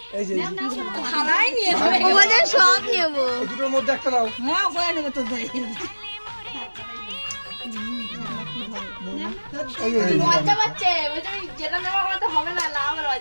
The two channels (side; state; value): both; inverted; correlation -1.00